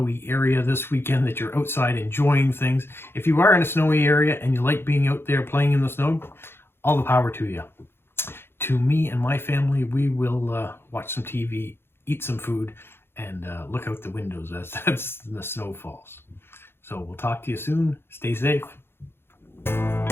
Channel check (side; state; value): right; late; 0.11 ms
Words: area this weekend, that you're outside enjoying things. If you are in a snowy area and you like being out there playing in the snow, all the power to you. To me and my family, we will watch some TV, eat some food, and look out the windows as the snow falls. So we'll talk to you soon. Stay safe.